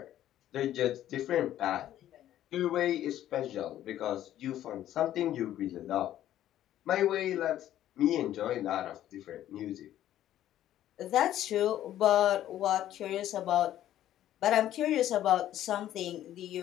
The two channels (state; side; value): quieter; right; 12.4 dB